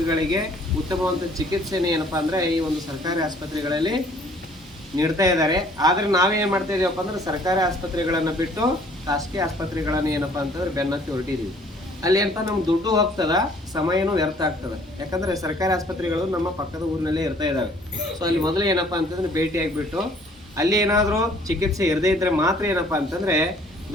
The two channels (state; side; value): normal; both; correlation 0.58